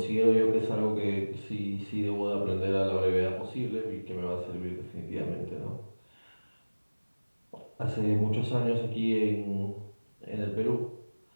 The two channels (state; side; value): inverted; both; correlation -1.00